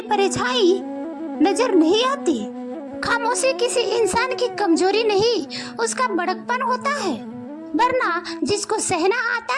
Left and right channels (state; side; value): identical; both; correlation 1.00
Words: परछाई नजर नहीं आती। खामोशी किसी इंसान की कमजोरी नहीं, उसका बड़कपन होता है। वरना जिसको सहना आता